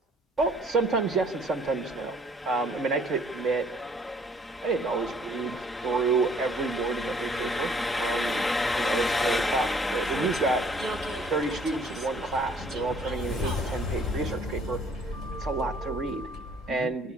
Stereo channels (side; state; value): both; normal; correlation 0.59